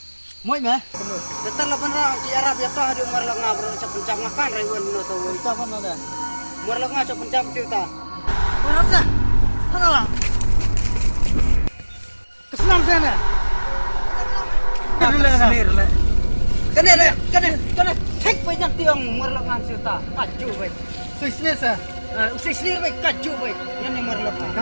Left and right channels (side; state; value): both; inverted; correlation -1.00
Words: Moi mah. Betul lah benar. Di Arab ya toh ada umar lengah berusaha pencap makan ribuan no tahu. Itu apa nada? Umar lengah cak pencap cerita. Mana sah? Mana lah? Kesenam sana. Kena. Cek banyak tiang umar lengah cerita. Kacau baik. Sisir sah. Sisir baik kacau baik. Yang umar